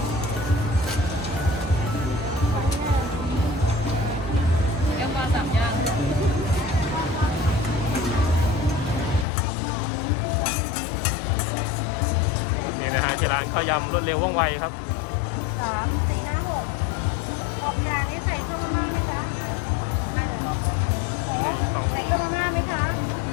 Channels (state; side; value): drops out; right; at 9.2 s